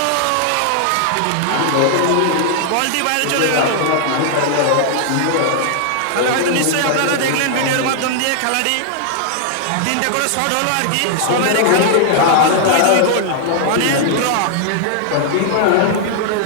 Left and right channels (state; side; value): different; both; correlation 0.00